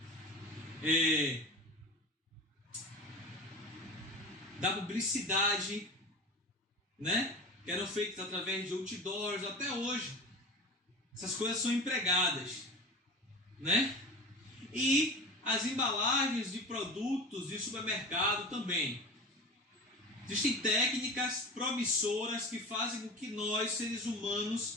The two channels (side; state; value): both; normal; correlation 0.32